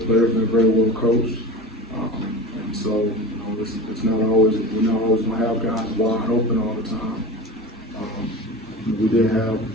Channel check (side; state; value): both; normal; correlation 0.33